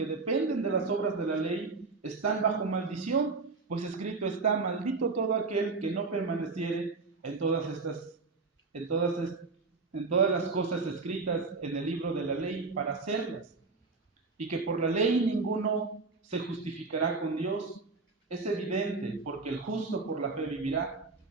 dependen de las obras de la ley están bajo maldición, pues escrito está, maldito todo aquel que no permaneciere en todas las cosas escritas en el libro de la ley para hacerlas, y que por la ley ninguno se justificará con Dios. Es evidente, porque el justo por la fe vivirá,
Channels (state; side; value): quieter; left; 4.0 dB